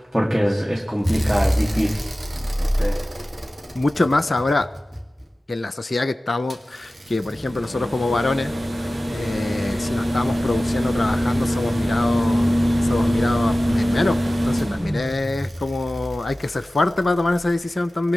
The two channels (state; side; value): normal; both; correlation 0.97